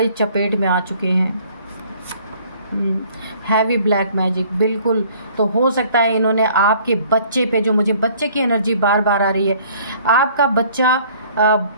चपेट में आ चुके हैं। हैवी ब्लैक मैजिक, बिल्कुल। तो हो सकता है इन्होंने आपके बच्चे पे, जो मुझे बच्चे की एनर्जी बार बार आ रही है, आपका बच्चा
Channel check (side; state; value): both; inverted; correlation -0.56